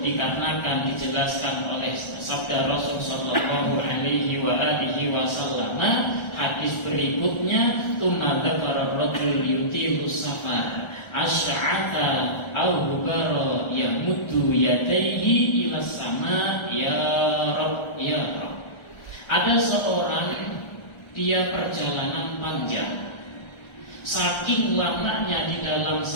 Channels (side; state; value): right; late; 1.4 ms